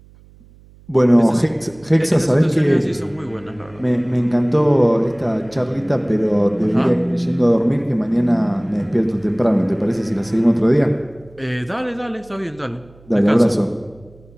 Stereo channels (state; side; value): noise; right; hum, 26 dB below the sound